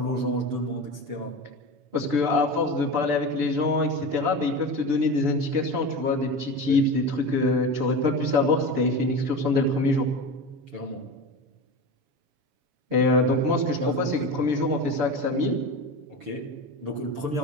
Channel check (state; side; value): late; left; 6.9 ms